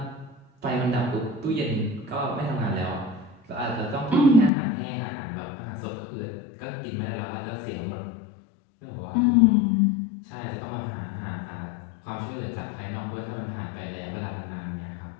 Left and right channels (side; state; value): right; drops out; at 4.5 s